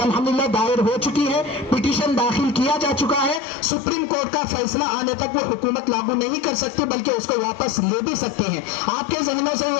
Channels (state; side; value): drops out; right; at 3.4 s